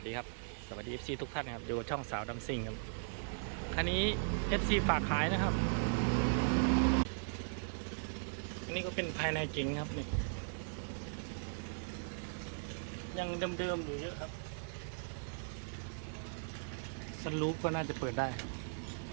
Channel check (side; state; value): left; silent; 52 dB below the other